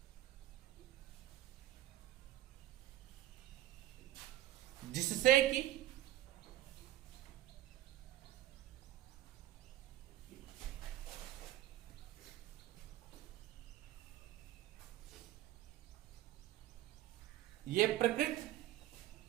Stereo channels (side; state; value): left; quieter; 14.0 dB